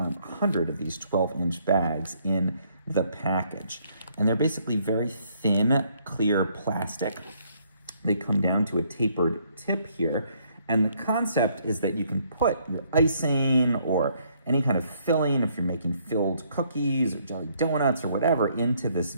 of these 12-inch bags in the package. And they're basically very thin, clear plastic. They come down to a tapered tip here. And the concept is that you can put your icing or any kind of filling, if you're making filled cookies or jelly donuts or whatever, into this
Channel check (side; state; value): both; inverted; correlation -0.68